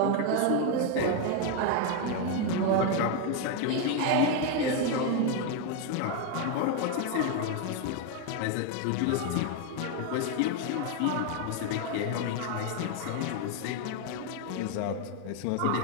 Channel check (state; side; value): different; both; correlation 0.01